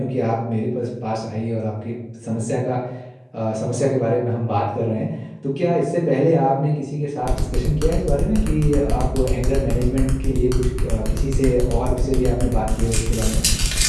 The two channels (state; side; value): identical; both; correlation 1.00